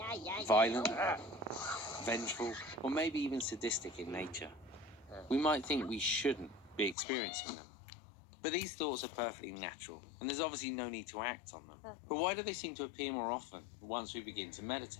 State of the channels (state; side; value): drops out; right; at 7.0 s